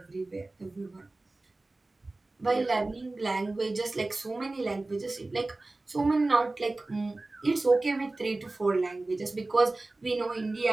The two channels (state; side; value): quieter; left; 3.0 dB